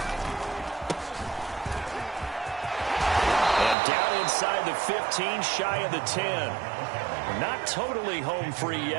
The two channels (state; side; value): drops out; left; at 3.8 s